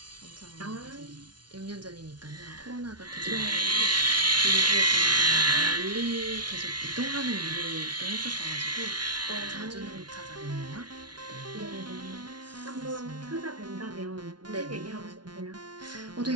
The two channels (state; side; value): late; left; 0.70 ms